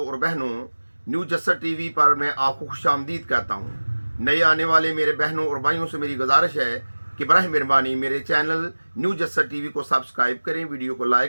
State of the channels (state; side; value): inverted; both; correlation -1.00